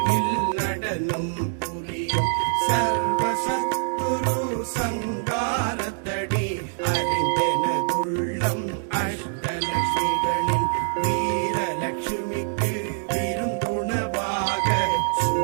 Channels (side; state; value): left; silent; digital silence